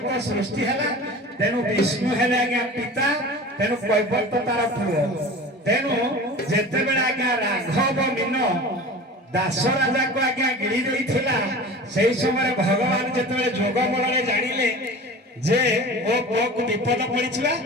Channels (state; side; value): normal; both; correlation 0.36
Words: को सृष्टि है तेणु विष्णु है आज्ञा पिता तेणु कैवर तो तार पुओ तेणु जितेबले आज्ञा राघव मीन दास राजा को आज्ञा गिरी देइथिला सेही समय भगवान जितेबले जोग बल जानिले जे ओ पुओ को विपद पड़िछिबा